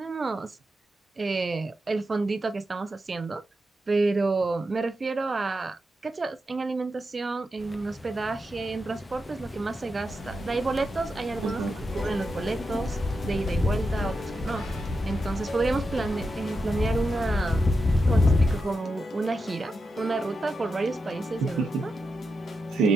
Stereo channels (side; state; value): both; normal; correlation 0.87